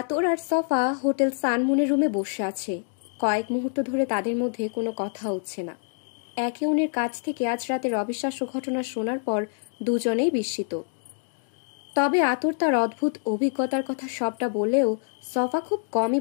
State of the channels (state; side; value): silent; right; digital silence